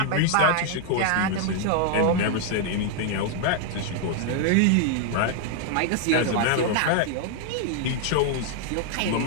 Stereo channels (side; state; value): both; different; correlation 0.00